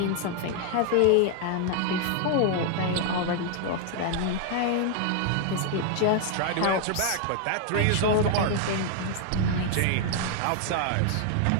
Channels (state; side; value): different; both; correlation 0.00